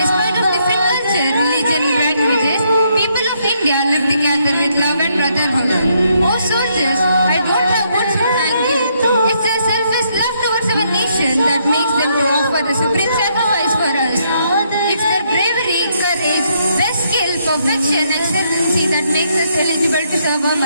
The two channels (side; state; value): both; inverted; correlation -0.74